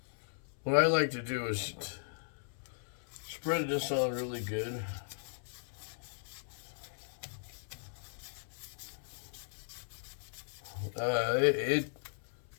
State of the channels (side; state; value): right; silent; 53 dB below the other